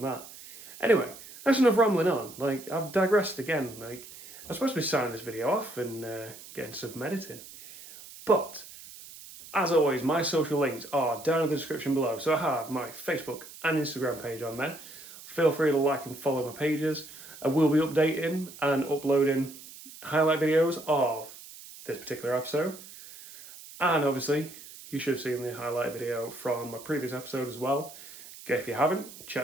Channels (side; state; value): right; noise; hiss, 17 dB below the sound